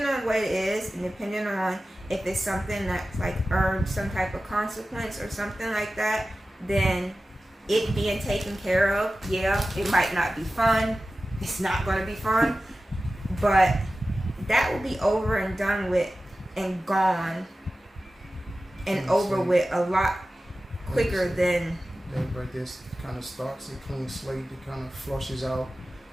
on what it is, and depending on if it's something that's like earned some type of consequence or something like that, then it being taken care of, yeah, it might not be fun. It's not going to be fun. But that will be over and done with and gone and over with a lot quicker than... That right there kind of starts a clean slate. It kind of flushes out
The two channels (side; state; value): both; normal; correlation 0.95